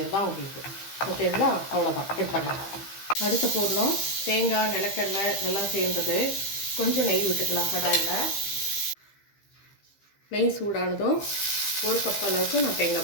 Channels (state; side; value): late; right; 15 ms